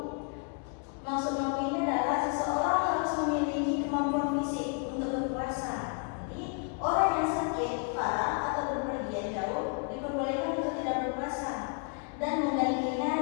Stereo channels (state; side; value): quieter; right; 39.2 dB